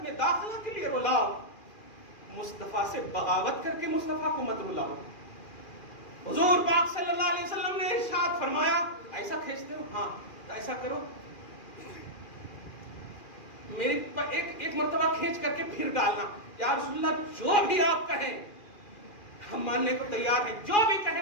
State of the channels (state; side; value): late; right; 2.4 ms